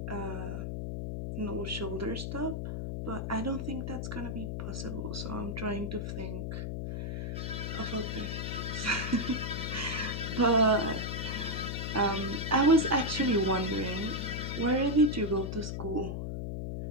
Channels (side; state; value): left; noise; hum, 3 dB below the sound